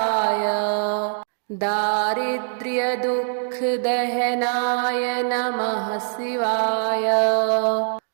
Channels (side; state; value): left; silent; digital silence